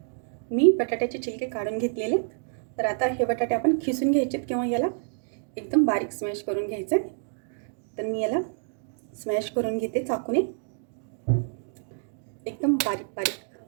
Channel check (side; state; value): left; silent; digital silence